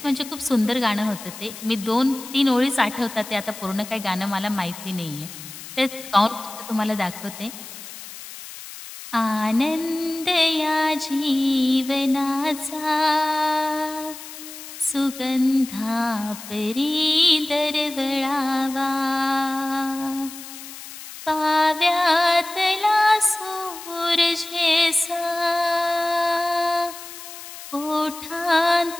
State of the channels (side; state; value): left; noise; hiss, 13 dB below the sound